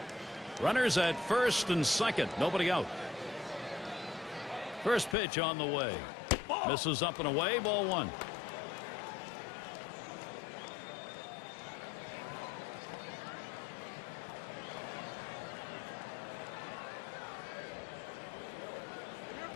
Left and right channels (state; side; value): drops out; right; at 5.2 s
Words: Runners at first and second. Nobody out. First pitch on the way. Misses up and away. Ball 1.